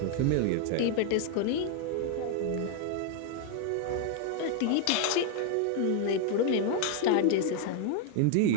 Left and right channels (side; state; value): both; different; correlation 0.00